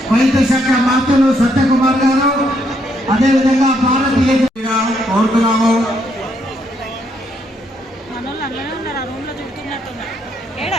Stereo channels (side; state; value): both; normal; correlation 0.74